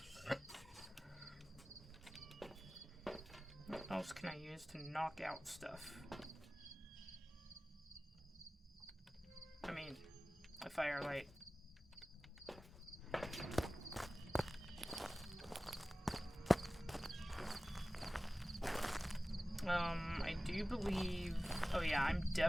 What else can I use to knock out stuff? I mean, a firelight. I do believe... Oh yeah, I'm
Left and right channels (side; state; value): both; normal; correlation 0.97